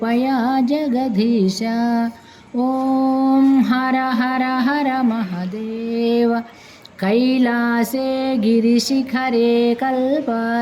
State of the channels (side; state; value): both; identical; correlation 1.00